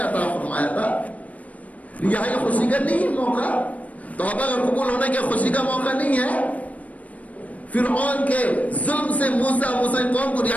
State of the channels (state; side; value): late; right; 0.069 ms